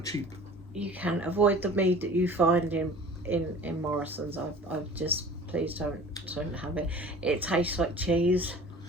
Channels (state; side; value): normal; both; correlation 0.43